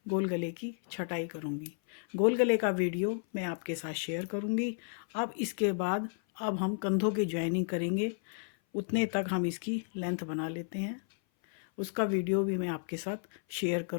गोल गले की छटाई करूँगी। गोल गले का वीडियो मैं आपके साथ शेयर करूँगी। अब इसके बाद अब हम कंधों की ज्वाइनिंग करेंगे। उतने तक हम इसकी लेंथ बना लेते हैं, उसका वीडियो भी मैं आपके साथ शेयर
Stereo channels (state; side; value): silent; right; 56 dB below the other